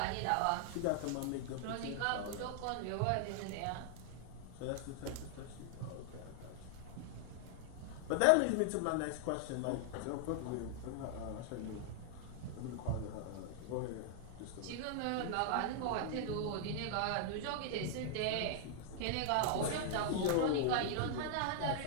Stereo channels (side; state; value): both; different; correlation 0.00